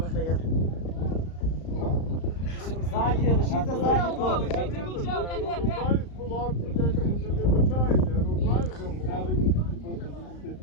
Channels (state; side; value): late; right; 35 ms